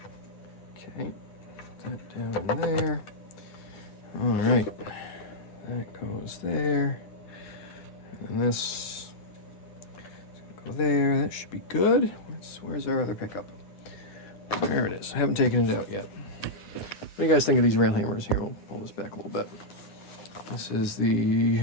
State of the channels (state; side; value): late; right; 9.6 ms